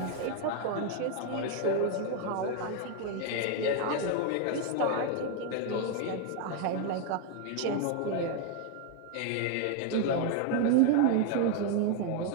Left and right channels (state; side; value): different; both; correlation 0.01